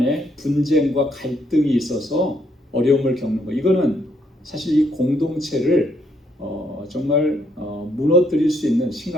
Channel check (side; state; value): both; normal; correlation 0.72